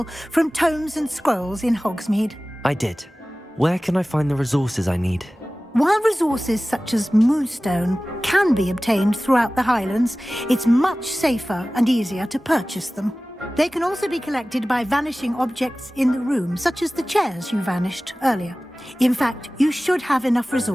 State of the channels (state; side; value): normal; both; correlation 0.97